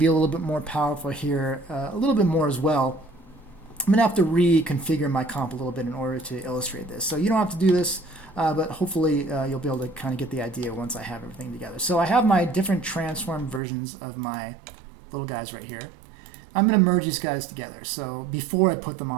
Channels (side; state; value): left; drops out; at 13.6 s